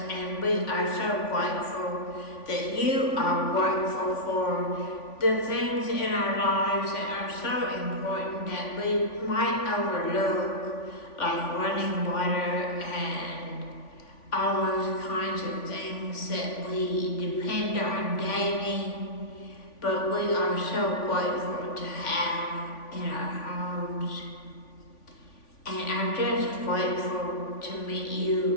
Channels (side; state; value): right; late; 3.5 ms